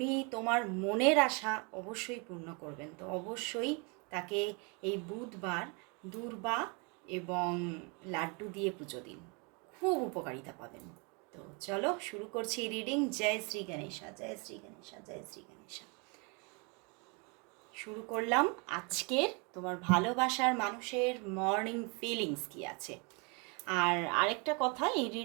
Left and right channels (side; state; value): left; quieter; 32.5 dB